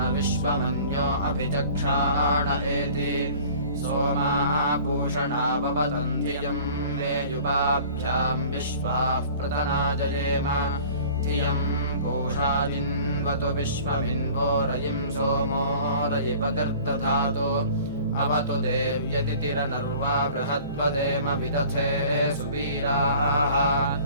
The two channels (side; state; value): both; inverted; correlation -0.47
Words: विश्वमन्यो अभिचक्षाण एति सोमाः पूषणा भवतम् धियम् मे युवाभ्याम् विश्वाः प्रतना जयेम धियम् पूषा जिन्वतु विश्वमिन्वो रयिम् सोमो रयिपकर्दधातु अवतु देव्यतिथिरनर्वा बृहद्वदेम विदथे सुवीराः